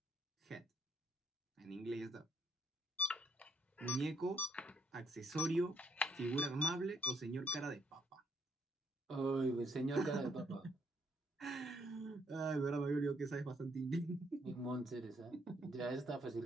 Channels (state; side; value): normal; both; correlation 0.70